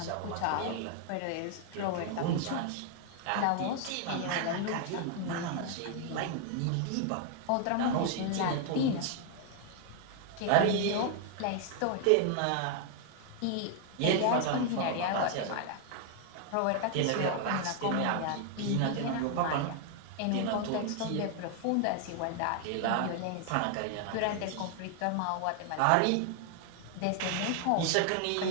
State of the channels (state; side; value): different; both; correlation 0.00